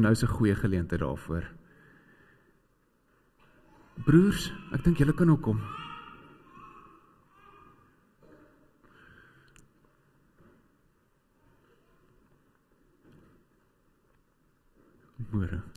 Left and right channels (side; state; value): both; identical; correlation 1.00